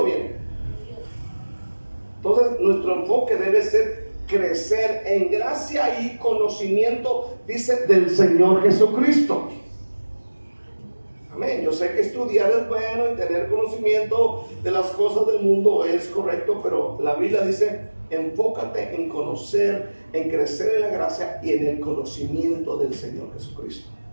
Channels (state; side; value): inverted; both; correlation -1.00